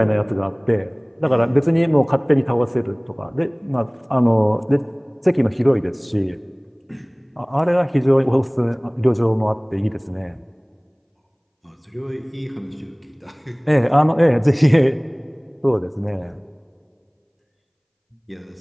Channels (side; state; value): both; identical; correlation 1.00